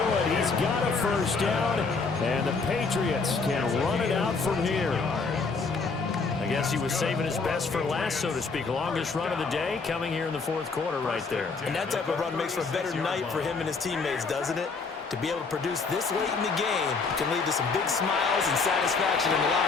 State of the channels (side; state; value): right; quieter; 4.5 dB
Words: He's got a first down, and the Patriots can run it out from here. I guess he was saving his best for last, so to speak. Longest run of the day coming here in the 4th quarter right there. And that type of run makes for a better night for him and his teammates, doesn't it? To be able to produce this late in the game can lead to some big smiles and satisfaction in the